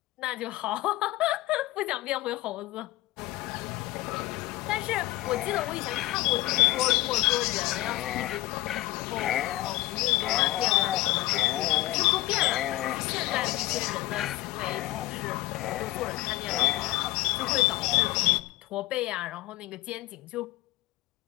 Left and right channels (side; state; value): right; quieter; 17.7 dB